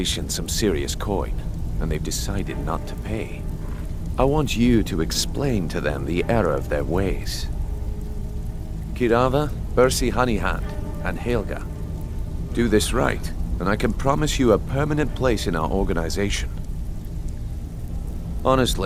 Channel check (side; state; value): both; identical; correlation 1.00